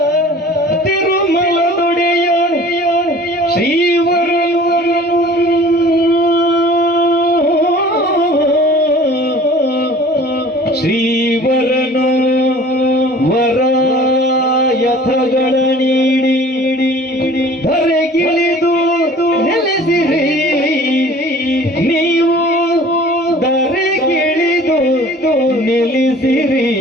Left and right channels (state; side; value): normal; both; correlation 0.47